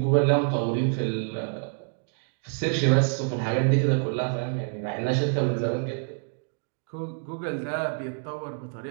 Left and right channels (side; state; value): left; silent; 60 dB below the other